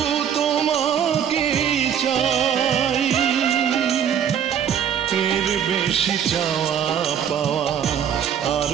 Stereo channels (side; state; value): left; quieter; 8.7 dB